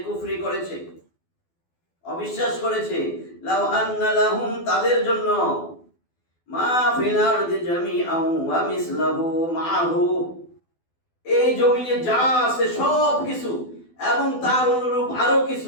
কুফরি করেছে, অবিশ্বাস করেছে, লাউ আন্না লাহুম, তাদের জন্য, মা ফিল আরদি জামিআন ওয়া মিসলুহু মা'আহু, এই জমিনে যা আছে সব কিছু এবং তার অনুরূপ আরো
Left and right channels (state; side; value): late; right; 12 ms